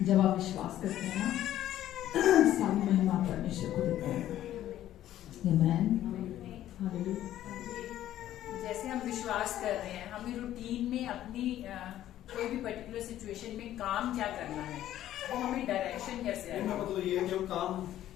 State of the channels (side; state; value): right; quieter; 12.7 dB